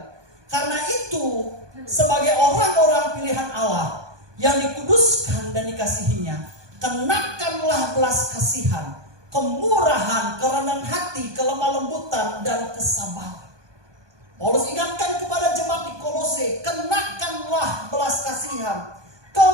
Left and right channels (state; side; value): late; left; 1.2 ms